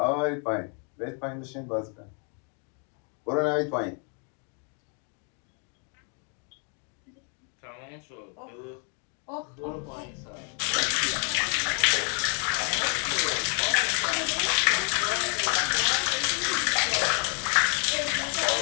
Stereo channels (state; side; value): quieter; right; 39.7 dB